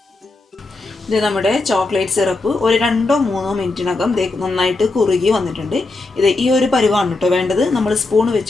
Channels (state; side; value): quieter; right; 3.3 dB